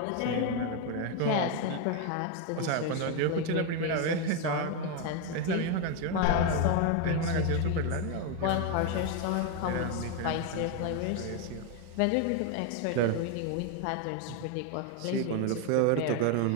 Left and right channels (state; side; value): different; both; correlation 0.01